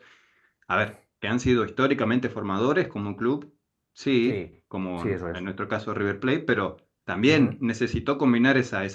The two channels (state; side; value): identical; both; correlation 1.00